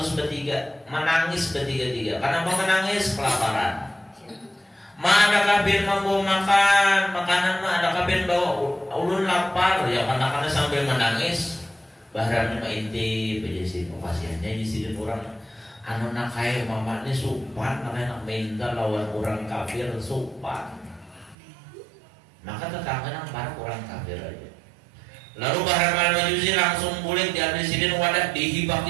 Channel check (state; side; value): drops out; left; at 21.4 s